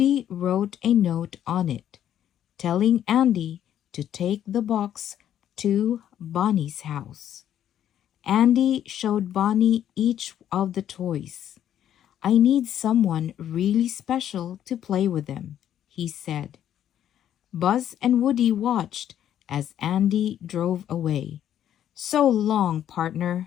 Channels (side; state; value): right; quieter; 10.6 dB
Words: wrote a note on it, telling Andy to take the box to Bonnie's house. Andy showed Bonnie each of the toys. "I need someone really special to play with them," he said. Buzz and Woody watched as Andy drove away. "So long,